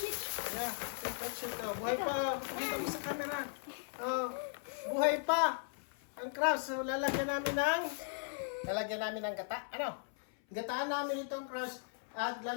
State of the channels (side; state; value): right; silent; 53 dB below the other